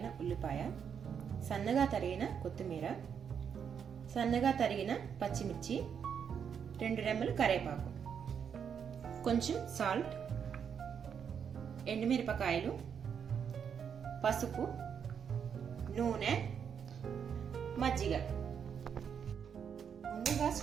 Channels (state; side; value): quieter; left; 7.4 dB